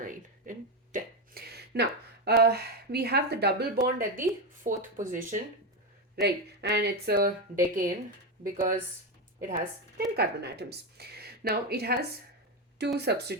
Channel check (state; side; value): normal; both; correlation 0.11